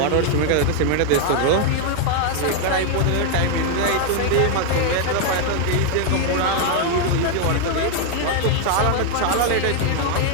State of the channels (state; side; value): different; both; correlation 0.00